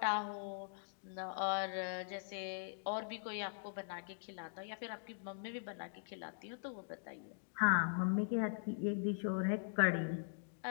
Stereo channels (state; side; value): silent; right; digital silence